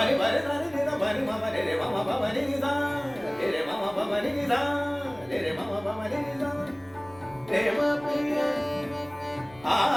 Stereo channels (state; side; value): noise; left; rumble, 25 dB below the sound